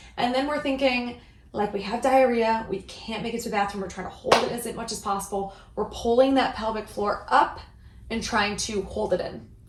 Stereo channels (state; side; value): identical; both; correlation 1.00